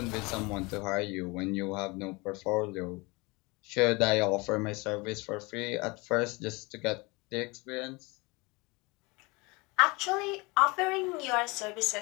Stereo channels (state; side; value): quieter; right; 25.8 dB